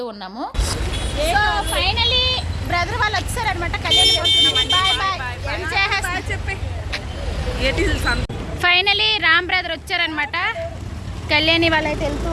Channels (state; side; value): identical; both; correlation 1.00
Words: ఉన్నాము. సో ఫైనలీ బ్రదర్ వాళ్ళు వచ్చారనమాట. కళ్యాణి బాయ్ బాయ్ చెప్పి ఫైనలీ రామ్ బ్రదర్ వచ్చారనమాట. కళ్యాణి వాళ్ళైతే వెళ్తూ